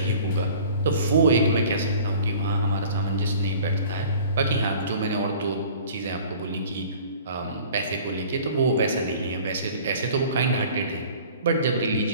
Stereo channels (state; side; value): inverted; both; correlation -0.47